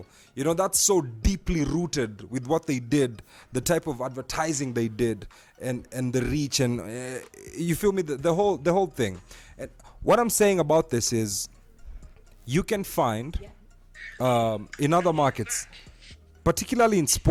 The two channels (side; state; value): both; identical; correlation 1.00